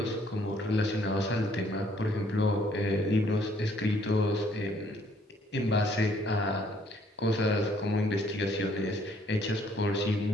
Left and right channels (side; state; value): both; normal; correlation 0.64